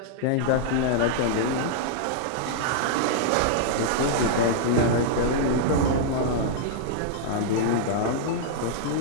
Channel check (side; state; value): both; different; correlation -0.01